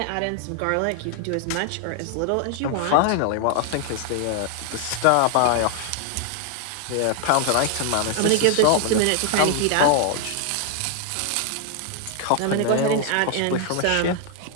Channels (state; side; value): different; both; correlation 0.00